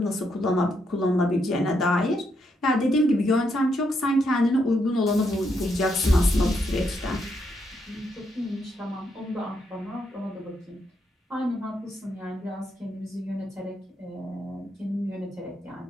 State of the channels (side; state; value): both; normal; correlation 0.78